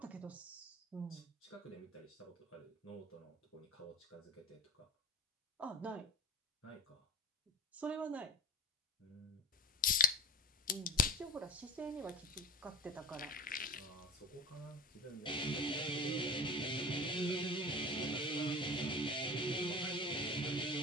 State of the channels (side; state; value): both; normal; correlation 0.35